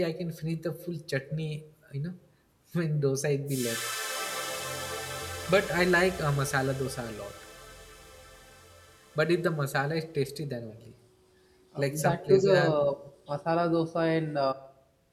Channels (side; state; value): both; identical; correlation 1.00